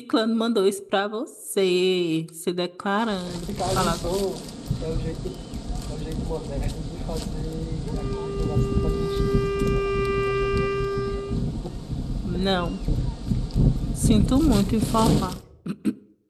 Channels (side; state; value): both; identical; correlation 1.00